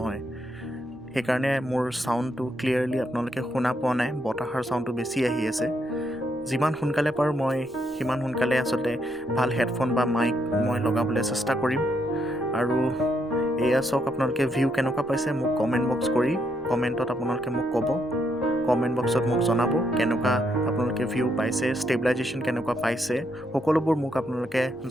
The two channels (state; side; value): noise; right; rumble, 26 dB below the sound